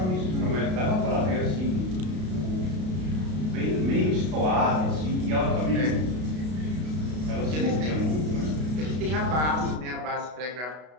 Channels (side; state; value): left; late; 32 ms